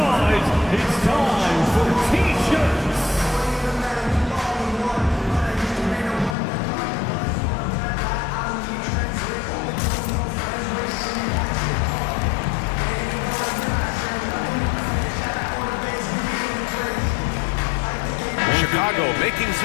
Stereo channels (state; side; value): drops out; right; at 6.4 s